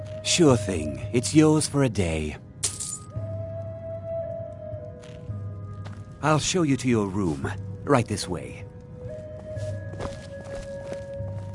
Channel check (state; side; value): identical; both; correlation 1.00